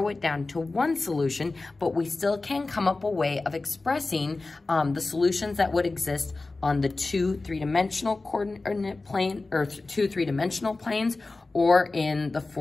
it down to one solution, but we still can come up a way of expressing the solutions that would exist on the 2 3-dimensional coordinate plane, or 2 3-dimensional planes, or in the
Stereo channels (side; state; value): right; quieter; 3.4 dB